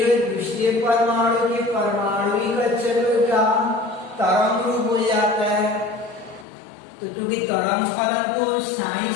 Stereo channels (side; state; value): right; drops out; at 6.5 s